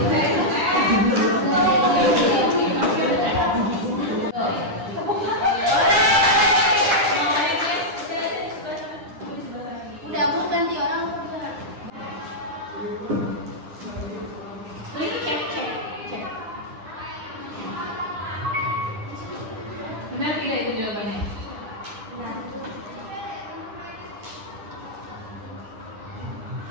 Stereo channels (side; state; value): left; late; 9.9 ms